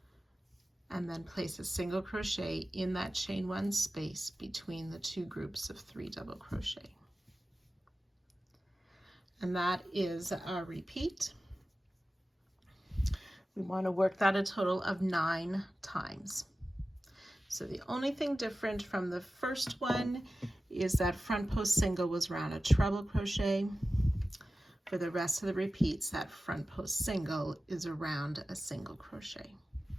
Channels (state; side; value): normal; both; correlation 0.95